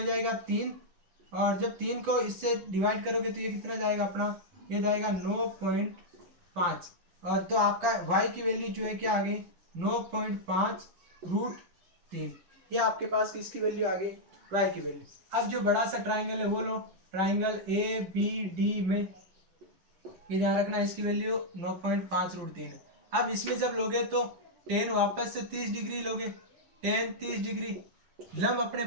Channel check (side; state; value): left; late; 11 ms